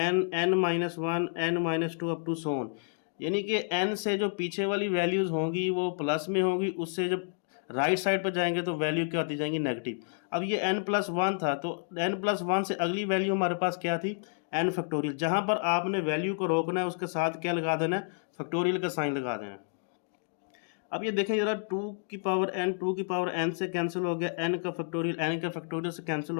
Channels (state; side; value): silent; right; digital silence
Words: minus one n minus two up to so on. यानी कि n से जो पीछे वाली वैल्यूज़ होंगी वो प्लस में होंगी, उससे जब राइट साइड पर जाएंगे तो वैल्यू क्या होती जाएंगी? नेगेटिव। अब ये n प्लस वन था तो n प्लस वन से अगली वैल्यू हमारे पास क्या थी? n factorial. जहाँ पर आपने वैल्यू को रोकना है उसके साथ क्या लगा देना है? फैक्टोरियल का साइन लगा देना है। अब ये देखें जरा, 2 की पावर n से कैंसिल हो गया, n का फैक्टोरियल से कैंसिल